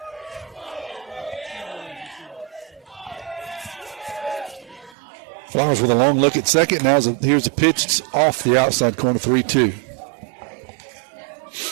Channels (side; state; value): left; drops out; at 5.0 s